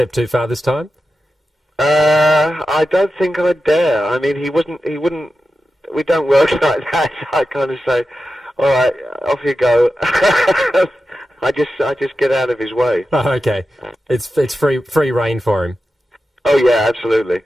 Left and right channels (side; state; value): both; normal; correlation 0.91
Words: too far this time? I don't think I dare. I mean, he wouldn't... We don't work like that. I kind of say, all right, off you go. I just get out of his way. Oh, okay. It's free rein for him. Oh, yeah, absolutely.